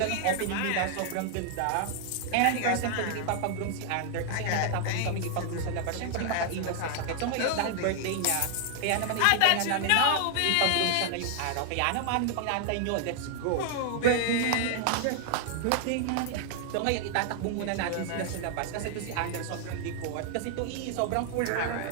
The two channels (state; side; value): different; both; correlation 0.00